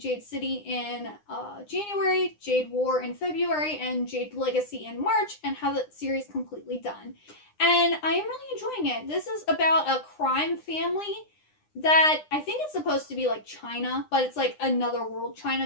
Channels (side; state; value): right; late; 9.8 ms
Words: City in January, Jade War in February, and Jade Legacy in March, and have the series completely done. And I am really enjoying it. This is about a crime family that I think it's supposed to be like China, but it's like another world